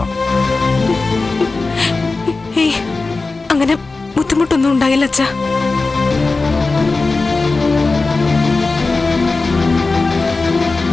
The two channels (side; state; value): right; quieter; 3.7 dB